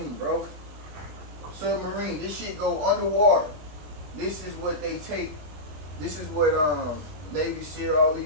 bro. Submarine. This shit go underwater. This is what they take. This is what Navy SEAL, all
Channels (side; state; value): left; late; 20 ms